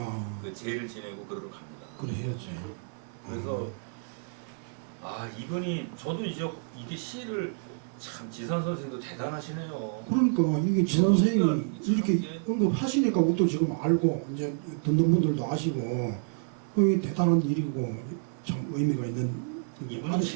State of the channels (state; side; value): quieter; left; 38.8 dB